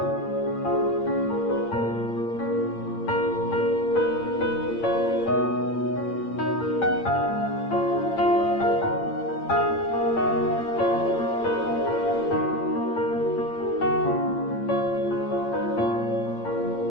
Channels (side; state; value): right; late; 8.8 ms